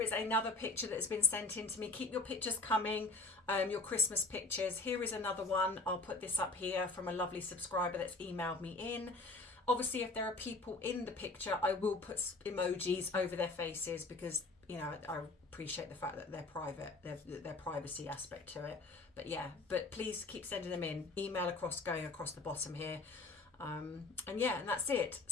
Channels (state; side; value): quieter; right; 3.3 dB